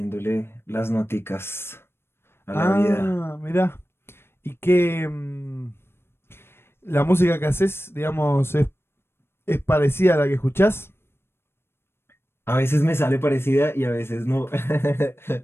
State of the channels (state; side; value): late; right; 0.12 ms